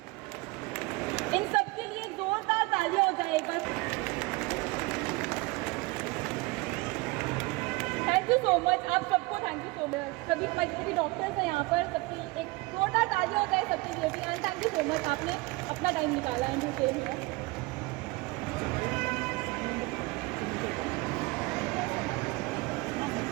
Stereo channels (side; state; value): left; quieter; 23.7 dB